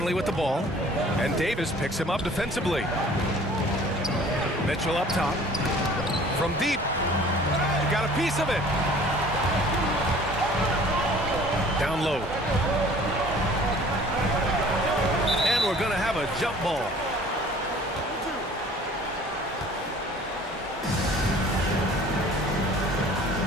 with the ball, and Davis picks him up defensively. Mitchell up top. From deep. He got a piece of it. Down low. And we're going to have a jump ball.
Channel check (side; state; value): both; normal; correlation 0.50